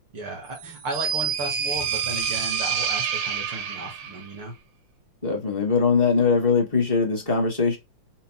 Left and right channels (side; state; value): left; late; 5.7 ms